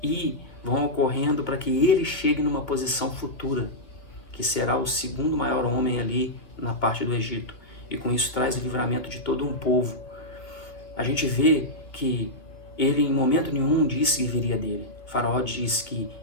e vão ocorrendo para que ele chegue numa posição futura, que será o segundo maior homem ali na parte do Egito. E com isso traz o livramento de todo um povo. A gente vê que ele em momento nenhum disse que viria dele. O faraó diz que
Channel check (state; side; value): late; right; 2.4 ms